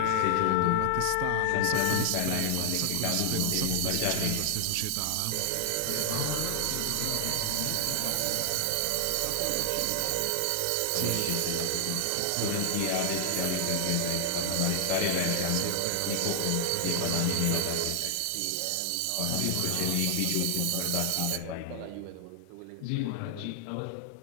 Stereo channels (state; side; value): different; both; correlation 0.00